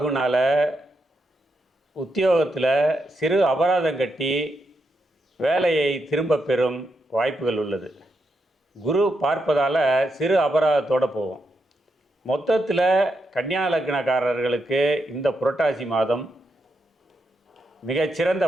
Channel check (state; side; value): normal; both; correlation 0.83